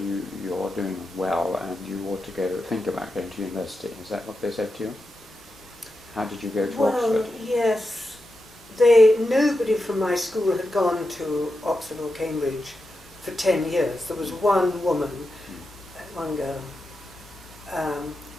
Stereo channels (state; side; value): normal; both; correlation 0.88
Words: you're doing well and you ought to think about going to university. Is that what they said to you? How did you go to Oxford? Well, yes. Nobody from my school had gone to Oxford or Cambridge for 10 years. There was one woman, one girl,